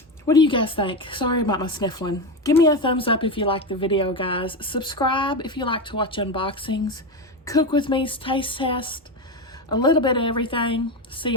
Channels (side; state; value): both; normal; correlation 0.16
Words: What do you guys think? Sorry about my sniffling. Give me a thumbs up if you like the video, guys. Subscribe if you like to watch unboxings. Cook with me's taste test. A little bit of everything. See